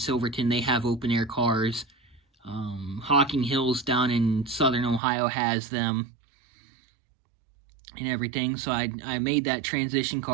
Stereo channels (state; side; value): drops out; left; at 5.0 s